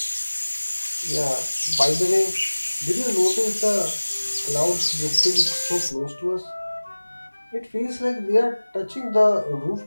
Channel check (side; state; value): both; inverted; correlation -1.00